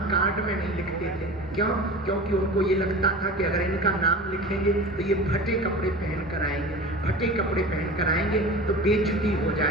कार्ड में नहीं लिखते थे, क्यों? क्योंकि उनको ये लगता था कि अगर इनका नाम लिखेंगे तो ये फटे कपड़े पहन कर आएंगे, फटे कपड़े पहन कर आएंगे तो बेइज्जती हो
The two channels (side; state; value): both; normal; correlation 0.35